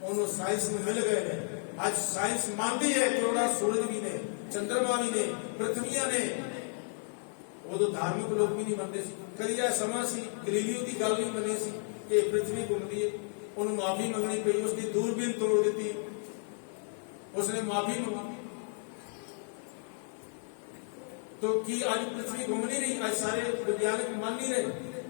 ਉਹਨੂੰ ਸਾਇੰਸ ਨੂੰ ਮਿਲ ਗਏ ਨੇ। ਅੱਜ ਸਾਇੰਸ ਮੰਨਦੀ ਹੈ ਕਰੋੜਾ ਸੂਰਜ ਵੀ ਨੇ, ਚੰਦਰਮਾ ਵੀ ਨੇ, ਪ੍ਰਿਥਵੀਆਂ ਨੇ। ਉਦੋਂ ਧਾਰਮਿਕ ਲੋਕ ਵੀ ਨਹੀਂ ਮੰਨਦੇ ਸੀ। ਕਦੀ ਇਹ ਸਮਾਂ ਸੀ ਗਲੀਲੀਓ ਦੀ ਗੱਲ ਨਹੀਂ ਮੰਨੀ ਸੀ ਕਿ ਪ੍ਰਿਥਵੀ ਘੁੰਮਦੀ ਹੈ। ਉਹਨੂੰ ਮਾਫੀ ਮੰਗਣੀ ਪਈ, ਉਸਦੀ ਦੂਰਬੀਨ ਤੋੜ ਦਿੱਤੀ, ਉਸਨੇ ਮਾਫੀ ਮੰਗੀ। तो की आज पृथ्वी घूम नहीं रही? आज सारे वैज्ञानिक मान नहीं रहे।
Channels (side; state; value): right; silent; 56 dB below the other